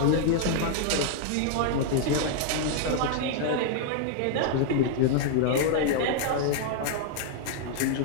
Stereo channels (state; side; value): different; both; correlation 0.00